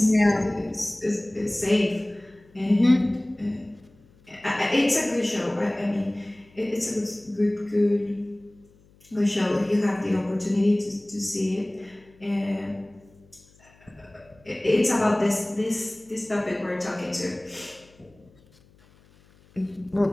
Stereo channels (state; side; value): noise; left; hum, 29 dB below the sound